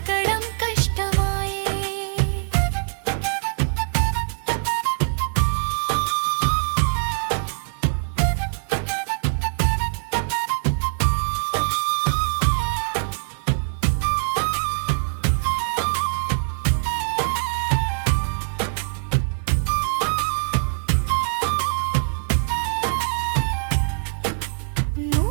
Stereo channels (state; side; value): silent; left; digital silence